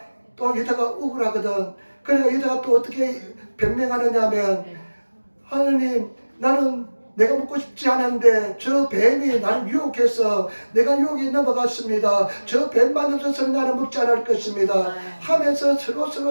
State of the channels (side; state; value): both; inverted; correlation -1.00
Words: 또 여자가 억울하거든. 그러니까 여자가 또 어떻게 변명하느냐 하면, 하느님, 나는 내가 먹고 싶지 않은데 저 뱀이 나를 유혹해서 내가 유혹에 넘어갔습니다. 저 뱀만 없어서는 나는 먹지 않을 것입니다 하면서